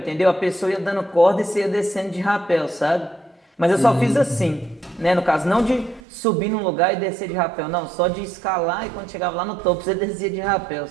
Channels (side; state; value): left; drops out; at 6.0 s